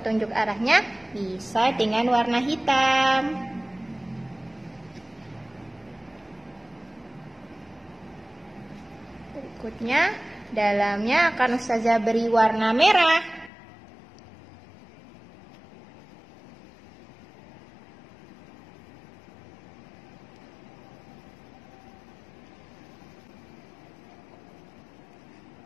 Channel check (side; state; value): right; drops out; at 13.5 s